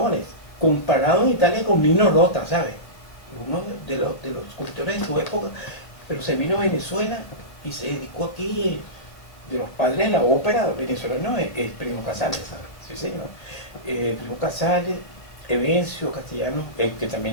comparado en Italia con Nino Rota, ¿sabes? Uno de los compositores de su época, pero se vino a Venezuela y se dedicó aquí, de los padres de la ópera venezolana, es Primo Casale, sí señor. Primo Casale, Evencio Castellano, el que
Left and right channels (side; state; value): right; late; 1.8 ms